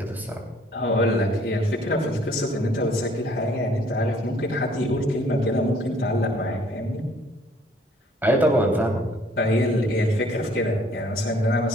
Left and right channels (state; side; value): normal; both; correlation 0.60